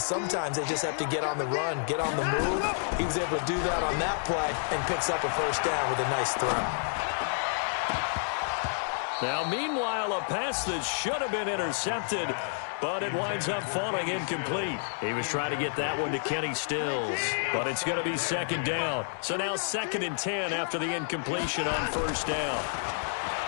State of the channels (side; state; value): right; silent; digital silence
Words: they just have to get on the run, get on the move. He was able to do that on that play and picks up a 1st down with a nice throw. Now, meanwhile, a pass that should have been intercepted, but it winds up falling incomplete. He was trying to get that one to Kenny Stills, but it's going to be 2nd down. So now 2nd and 10 after the incompletion on 1st down.